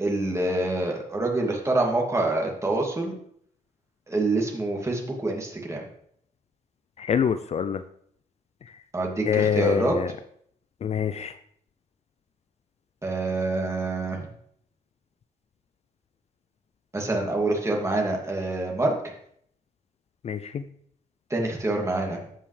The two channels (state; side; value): normal; both; correlation 0.68